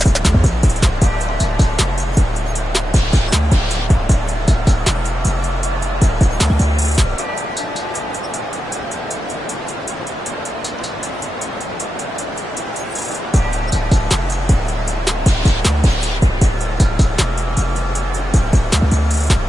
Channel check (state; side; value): normal; both; correlation 0.90